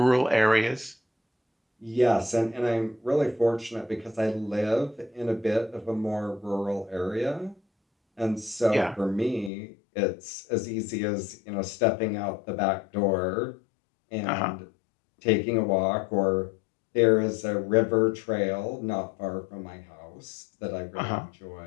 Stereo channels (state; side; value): drops out; right; at 9.5 s